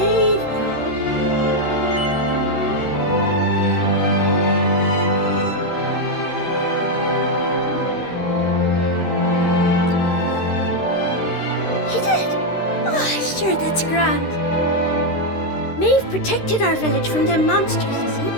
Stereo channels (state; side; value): late; right; 13 ms